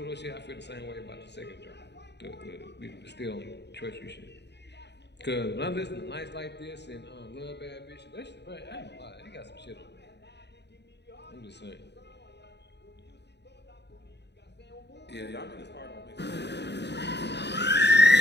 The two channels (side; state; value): right; late; 0.50 ms